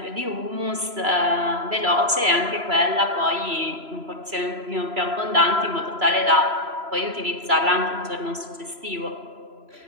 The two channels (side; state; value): left; late; 3.0 ms